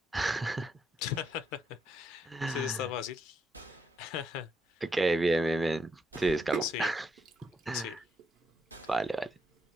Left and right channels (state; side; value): normal; both; correlation 0.78